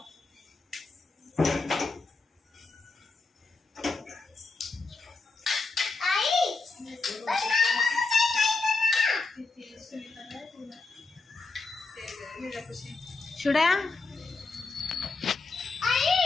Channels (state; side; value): quieter; right; 3.8 dB